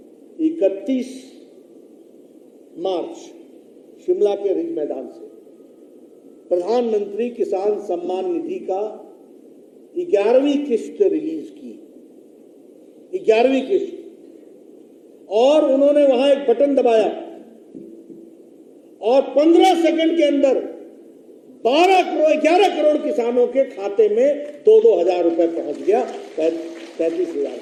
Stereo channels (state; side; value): identical; both; correlation 1.00